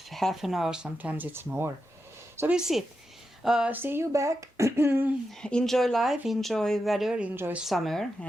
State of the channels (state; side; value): normal; both; correlation 0.88